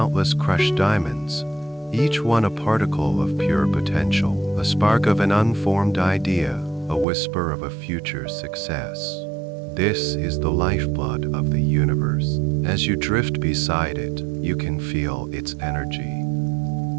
crushed diamonds, each one a particle of pure potential, a spark of an unformed idea, a whisper of a future success. This is the lifeblood of the universe. As you drift beside it, you can feel its energy.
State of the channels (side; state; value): left; drops out; at 7.1 s